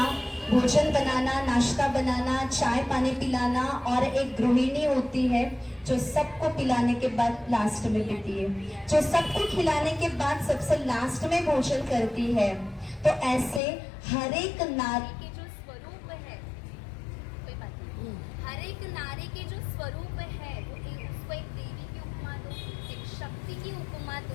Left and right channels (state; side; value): drops out; right; at 13.6 s